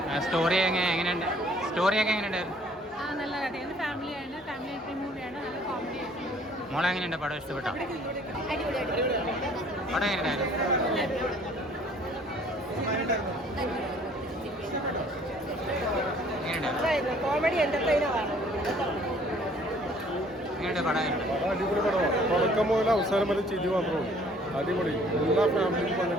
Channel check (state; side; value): normal; both; correlation 0.57